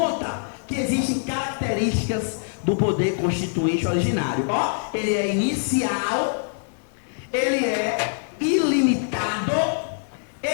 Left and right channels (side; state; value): right; silent; digital silence